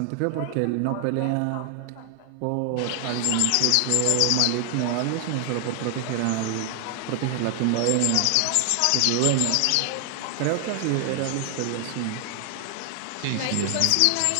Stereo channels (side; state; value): both; different; correlation 0.00